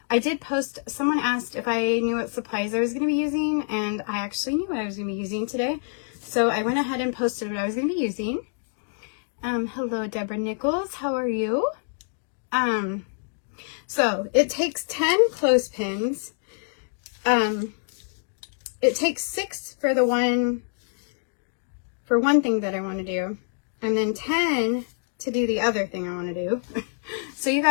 did post, someone asked if I knew what supplies I was going to be using, and I actually knew what I was going to be using today. So I went ahead and posted what I was going to be using. Hello, Deborah Nichols. How are you? So it takes 10 clothespins. It takes 6 for one thing that I want to do, and then 10 to do the other thing I want to do. So you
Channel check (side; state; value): right; silent; 61 dB below the other